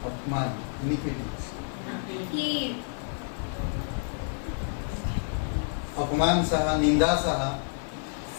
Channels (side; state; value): right; silent; digital silence